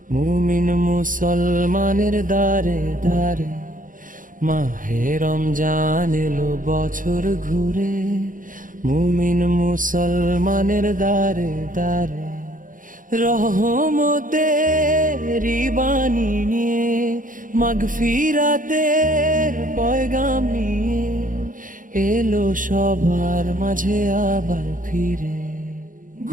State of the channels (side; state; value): left; late; 0.39 ms